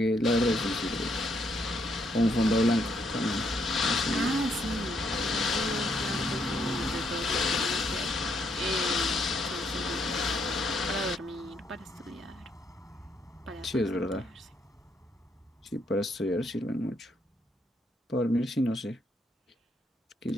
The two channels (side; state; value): both; normal; correlation 0.74